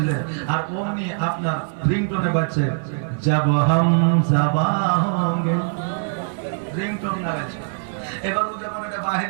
আর অমনি আপনার রিংটোনে বাজছে যাব হাম যাবা হোঙ্গে, রিংটোন লাগাচ্ছে। এবার ও যখন এটা বাহির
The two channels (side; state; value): left; silent; digital silence